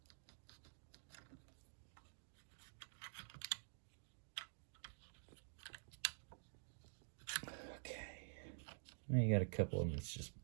Okay. Now you got a couple of them that's just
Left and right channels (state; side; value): silent; left; digital silence